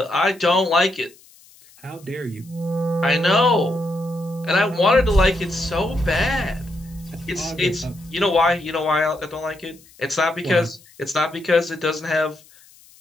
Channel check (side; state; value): left; noise; hiss, 26 dB below the sound